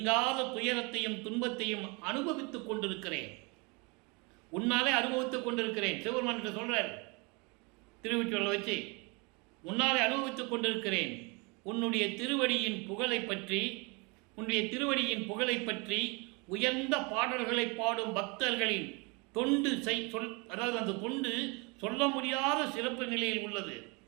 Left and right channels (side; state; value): left; quieter; 29.5 dB